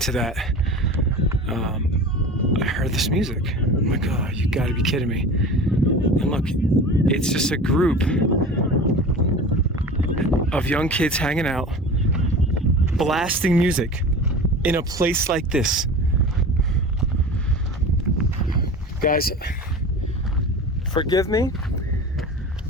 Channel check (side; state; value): both; normal; correlation 0.35